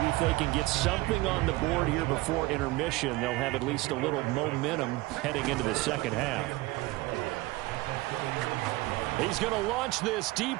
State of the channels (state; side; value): quieter; left; 20.4 dB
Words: if they can get something on the board here before intermission, they'll have at least a little momentum heading into the second half. He's going to launch this